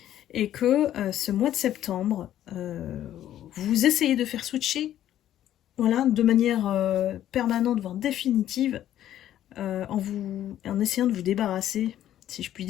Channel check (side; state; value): right; quieter; 11.9 dB